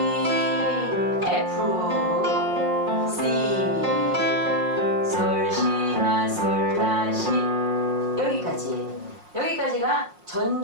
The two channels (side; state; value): left; late; 5.6 ms